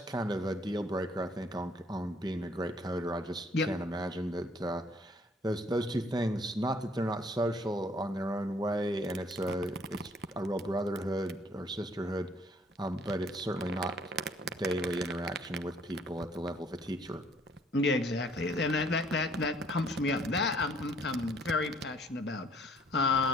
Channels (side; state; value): both; normal; correlation 0.61